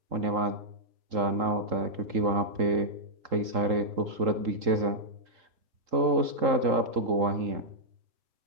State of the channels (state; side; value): late; left; 3.8 ms